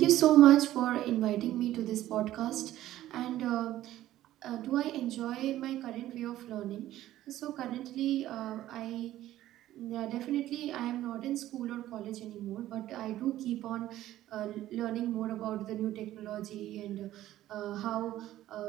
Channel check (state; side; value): quieter; left; 14.0 dB